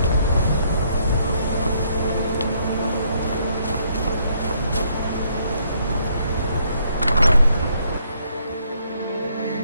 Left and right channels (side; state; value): both; inverted; correlation -0.70